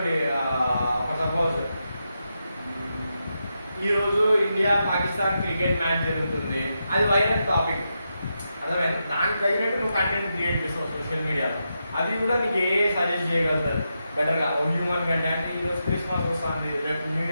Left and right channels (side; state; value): both; inverted; correlation -0.86